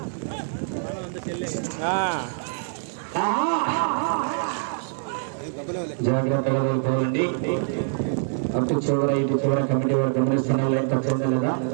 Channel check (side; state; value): left; silent; 62 dB below the other